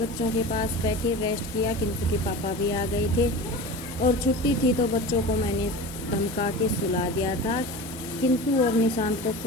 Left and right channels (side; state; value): right; noise; hiss, 29 dB below the sound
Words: के पास बैठे रेस्ट किया। किंतु के पापा भी आ गए थे और छुट्टी थी, तो बच्चों को मैंने धमका के सुला दिया था। किंतु और निशांत तो